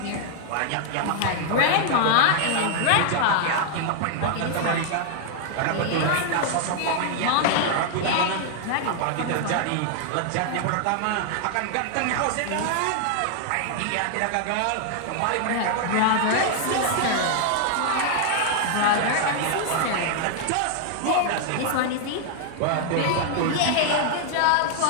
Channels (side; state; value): both; different; correlation 0.00